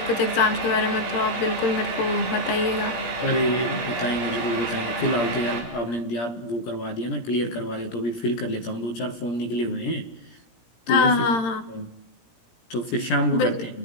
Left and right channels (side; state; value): right; late; 17 ms